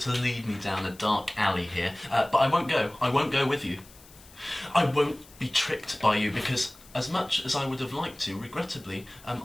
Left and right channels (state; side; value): noise; left; hiss, 23 dB below the sound